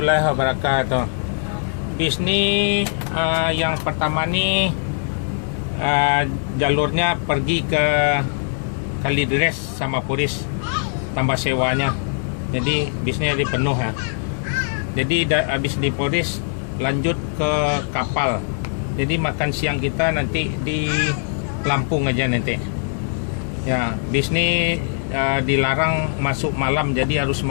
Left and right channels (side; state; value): right; silent; digital silence